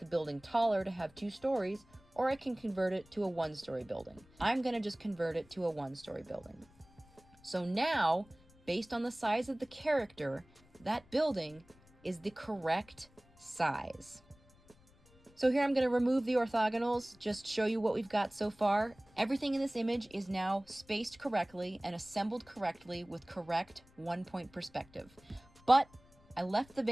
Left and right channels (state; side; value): noise; left; rumble, 28 dB below the sound